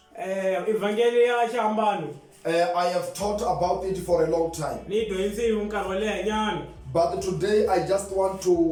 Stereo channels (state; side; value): identical; both; correlation 1.00